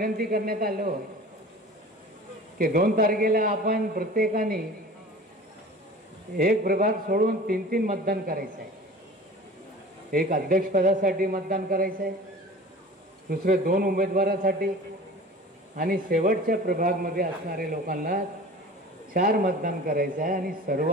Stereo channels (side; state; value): both; normal; correlation 0.40